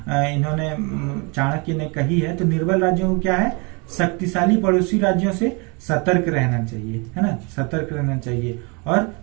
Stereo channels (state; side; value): quieter; left; 30.7 dB